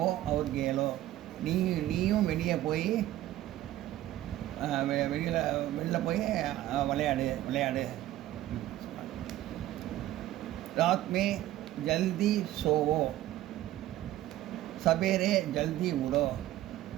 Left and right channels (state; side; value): quieter; left; 14.2 dB